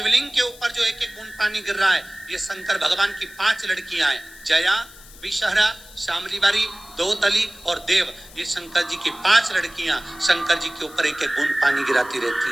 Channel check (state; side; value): noise; left; hiss, 20 dB below the sound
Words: के ऊपर जो एक एक बूंद पानी गिर रहा है, ये शंकर भगवान की 5 लड़कियां हैं, जया, विषहरा, शामलीबारी, दोतली और देव। ये शंकर जी की 5 लड़कियां शंकर जी के ऊपर एक एक बूंद पानी गिराती रहती